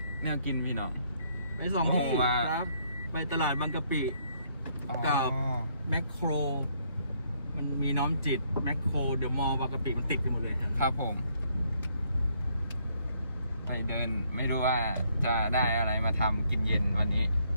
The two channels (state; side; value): inverted; both; correlation -0.69